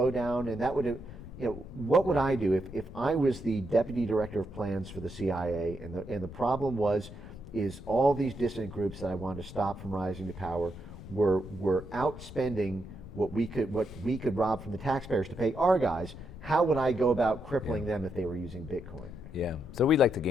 down. And that would what would I do if I was the deputy director of plans for the CIA, and the problem is all these dissident groups that I wanted to stop from rising to power were outspending what we could rob from the taxpayers to pay our guys. How would I go about crippling them if they were using Bitcoin? Yeah, so we like to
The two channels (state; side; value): noise; left; rumble, 14 dB below the sound